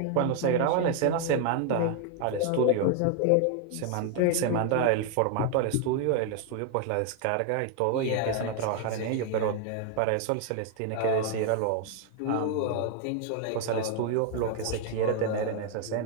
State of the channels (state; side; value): different; both; correlation 0.00